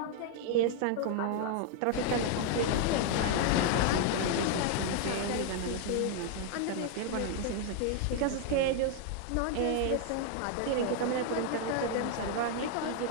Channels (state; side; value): different; both; correlation 0.00